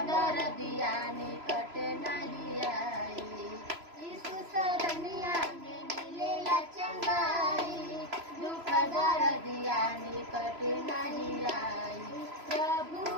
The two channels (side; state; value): left; late; 3.0 ms